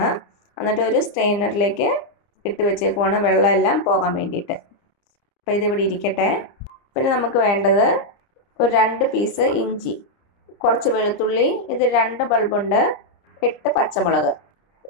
എന്നിട്ട് ഒരു സ്ട്രെയിനറിലേക്ക് ഇട്ട് വെച്ചേക്കുവാണ് വെള്ളം എല്ലാം പോകാൻ വേണ്ടിയിട്ട്. അപ്പോൾ ഇതിവിടെ ഇരിക്കട്ടെ. പിന്നെ നമുക്ക് വേണ്ടത് ഒരു 2 പീസ് ഇഞ്ചി, കുറച്ച് വെളുത്തുള്ളി, ഇത് 2 ബൾബുണ്ട്, 8 പച്ചമുളക്,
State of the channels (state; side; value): late; right; 30 ms